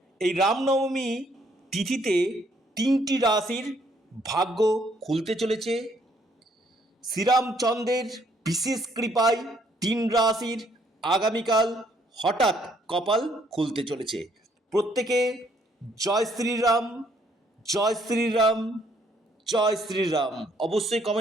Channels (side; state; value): both; normal; correlation 0.67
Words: এই রামনবমী তিথিতে 3টি রাশির ভাগ্য খুলতে চলেছে। শ্রীরামচন্দ্রের বিশেষ কৃপায় 3 রাশির আগামীকাল হঠাৎ কপাল খুলতে চলেছে। প্রত্যেকে জয় শ্রীরাম, জয় শ্রীরাম, জয় শ্রীরাম অবশ্যই